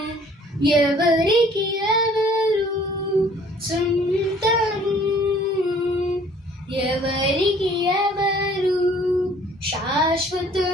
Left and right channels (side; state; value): both; normal; correlation 0.56